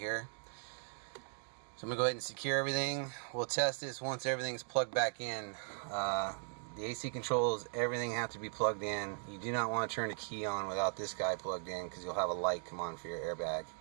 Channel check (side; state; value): left; silent; 52 dB below the other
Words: So I'm going to go ahead and secure everything. We'll test this once everything's plugged back in. The AC controls, everything have to be plugged in. You do not want to turn the key on without this guy plugged in, because you'll have a light come on for your airbag.